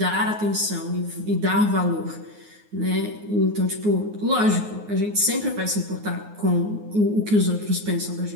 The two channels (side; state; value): left; late; 9.5 ms